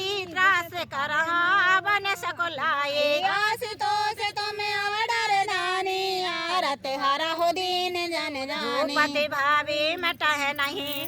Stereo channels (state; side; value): identical; both; correlation 1.00